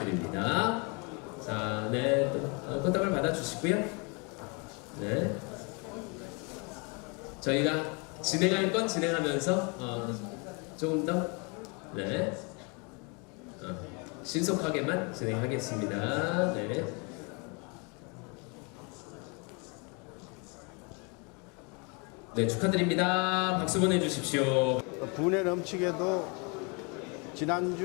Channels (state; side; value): quieter; right; 32.5 dB